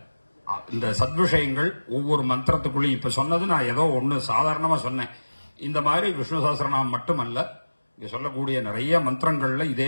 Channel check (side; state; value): both; inverted; correlation -1.00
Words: இந்த சத்விஷயங்கள் ஒவ்வொரு மந்திரத்துக்குள்ளேயும் இப்ப சொன்னது நான் ஏதோ ஒண்ணு சாதாரணமா சொன்னேன். இந்த மாதிரி விஷ்ணு சஹஸ்ரநாமம் மட்டுமல்ல, இங்க சொல்லக்கூடிய நிறைய மந்திரங்கள்ல இதே